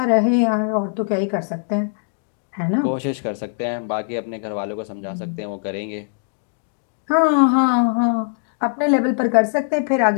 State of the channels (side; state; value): right; silent; 65 dB below the other